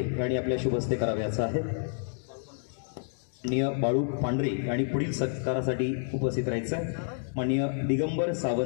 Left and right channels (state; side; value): silent; right; digital silence